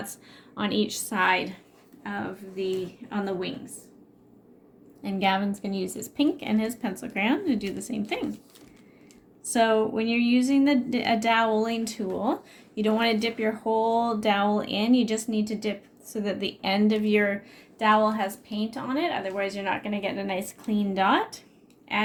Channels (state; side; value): identical; both; correlation 1.00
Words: on each side of on the wings. And Gavin's going to use his pink and his pencil crayon to do the same thing. So when you're using a doweling tool, you don't want to dip your whole dowel in. You just need to dip so that the end of your dowel has paint on it. Otherwise, you're not going to get a nice clean dot.